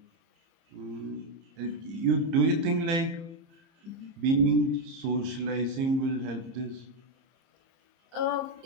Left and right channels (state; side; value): late; left; 30 ms